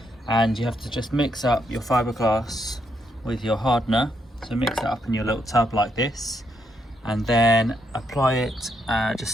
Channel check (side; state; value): both; normal; correlation 0.77